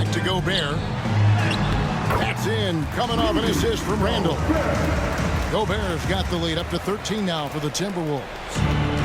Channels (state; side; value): identical; both; correlation 1.00